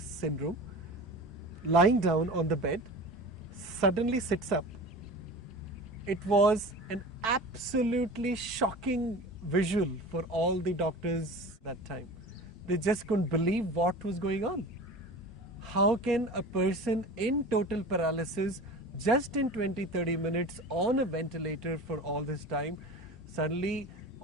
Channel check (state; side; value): normal; both; correlation 0.35